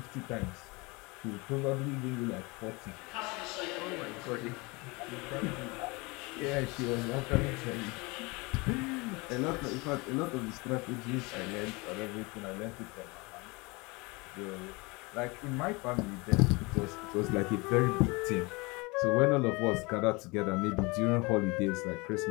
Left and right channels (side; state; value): right; quieter; 26.0 dB